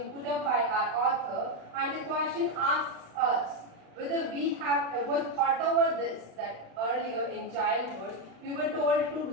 put up by our author, and the question asks us whether we have ever thought over this, that earlier in childhood we were told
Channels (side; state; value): left; late; 35 ms